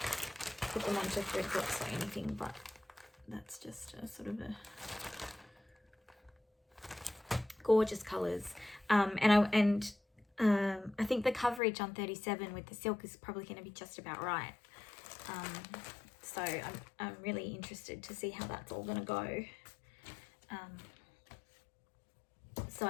put them onto thread drops or anything, but that's just a sort of a gorgeous colours. I think the coverage on 37 with the silk is probably going to be just about right. So I'm really interested to see how that's all going to go. So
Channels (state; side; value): drops out; right; at 11.6 s